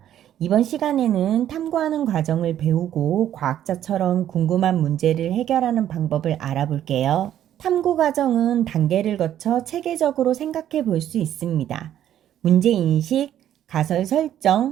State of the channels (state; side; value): quieter; left; 11.2 dB